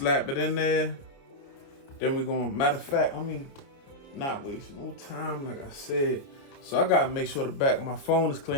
it in there. Then we're gonna, matter of fact, let me not waste no time, like I said. So I gotta make sure the back of my phone is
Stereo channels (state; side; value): late; right; 28 ms